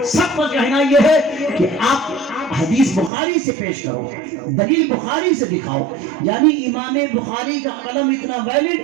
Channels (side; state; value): left; drops out; at 3.1 s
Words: سب کا کہنا یہ ہے کہ آپ حدیث بخاری سے پیش کرو، دلیل بخاری سے دکھاؤ۔ یعنی امام بخاری کا قلم اتنا ویلڈ،